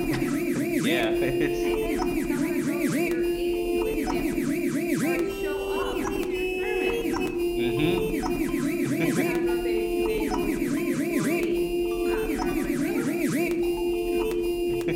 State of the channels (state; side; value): identical; both; correlation 1.00